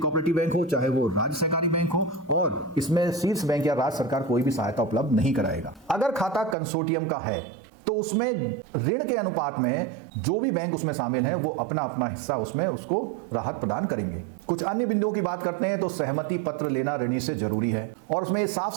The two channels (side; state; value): left; drops out; at 6.6 s